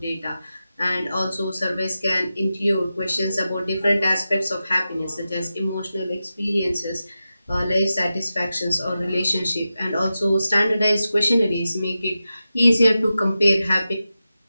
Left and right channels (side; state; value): both; inverted; correlation -0.92